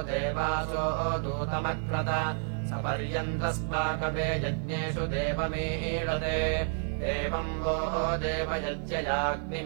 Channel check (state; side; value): silent; left; 58 dB below the other